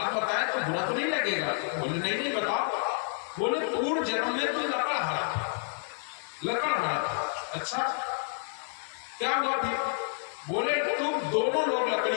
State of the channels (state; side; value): silent; right; 58 dB below the other